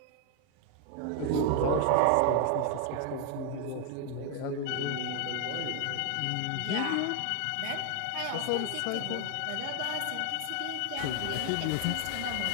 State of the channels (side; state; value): both; different; correlation 0.00